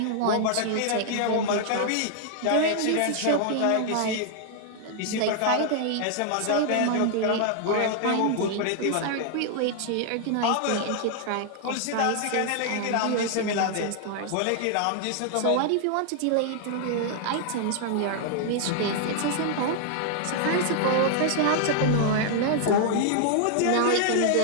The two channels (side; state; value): both; different; correlation -0.01